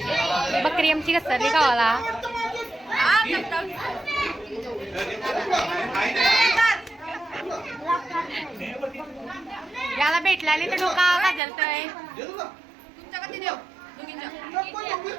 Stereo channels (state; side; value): drops out; left; at 11.4 s